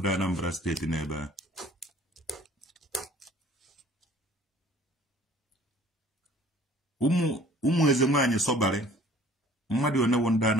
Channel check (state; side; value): normal; both; correlation 0.52